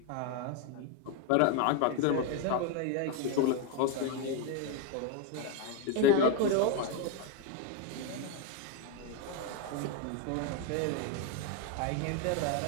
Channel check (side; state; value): both; different; correlation 0.02